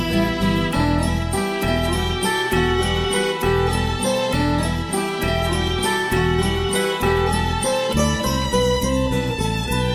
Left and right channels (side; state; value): both; identical; correlation 1.00